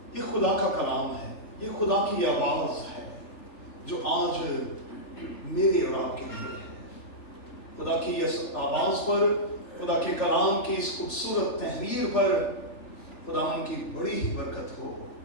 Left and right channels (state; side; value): late; right; 3.4 ms